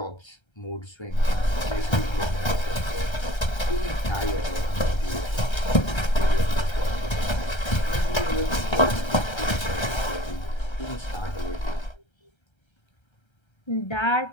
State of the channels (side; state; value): right; late; 1.3 ms